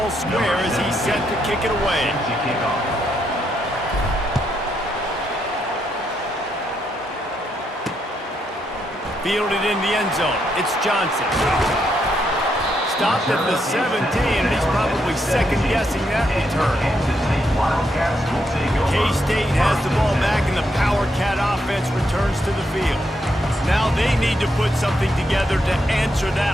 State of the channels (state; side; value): normal; both; correlation 0.78